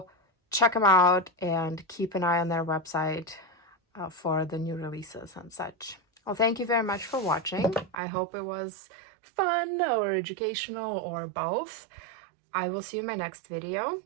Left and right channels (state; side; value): drops out; left; at 8.0 s